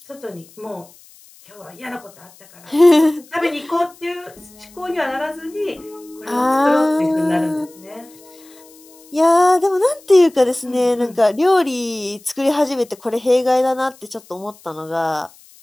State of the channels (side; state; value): left; noise; hiss, 25 dB below the sound